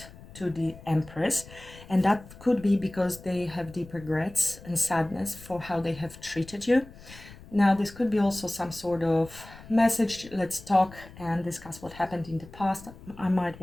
to the Empress. And that could be because they have deep regrets and sadness for how they have treated you. Now, this could be also some sort of message. Let's talk and discuss what happened in the past. I might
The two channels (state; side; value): noise; left; rumble, 19 dB below the sound